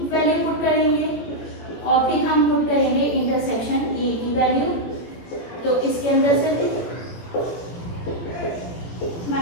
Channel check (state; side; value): late; right; 17 ms